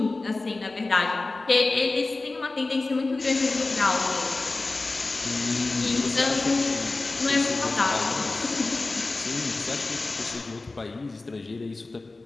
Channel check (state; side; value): quieter; right; 3.3 dB